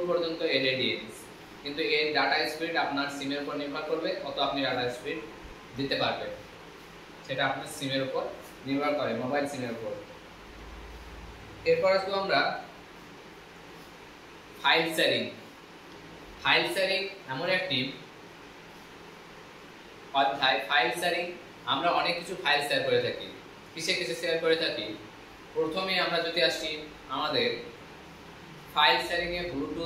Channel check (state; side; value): identical; both; correlation 1.00